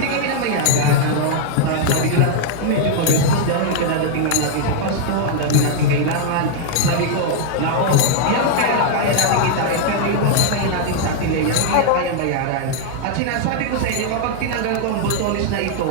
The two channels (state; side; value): different; both; correlation 0.00